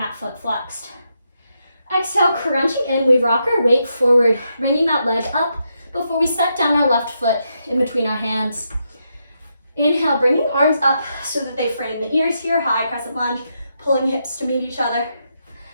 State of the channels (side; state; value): both; inverted; correlation -0.82